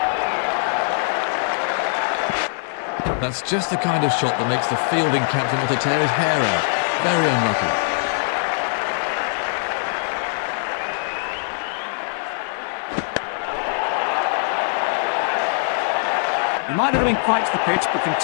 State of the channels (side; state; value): right; silent; 61 dB below the other